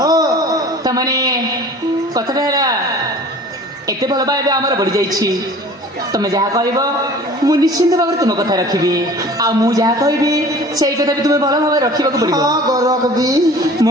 हो ତାମାନେ କଥାଟା ହେଲା ଏତେ ଭଲ ପାଇବା ଆମର ବଢିଯାଇଛି ତମେ ଯାହା କହିବ ମୁଁ ନିଶ୍ଚିନ୍ତ ଭାବରେ ତୁମ କଥା ରଖିବି ଆଉ ମୁଁ ଯାହା କହିବି ସେଇ କଥା ବି ତୁମେ ଭଲ ଭାବରେ ରଖିବାକୁ ପଡିବ हाँ गोरख भी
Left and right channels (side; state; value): both; normal; correlation 0.45